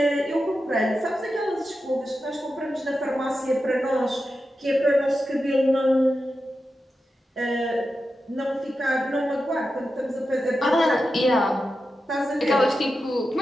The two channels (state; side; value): normal; both; correlation 0.90